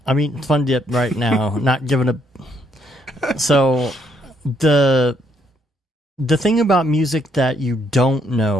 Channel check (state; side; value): normal; both; correlation 0.71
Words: mean, Fun Dip right now, not giving a. So the thing about music that you don't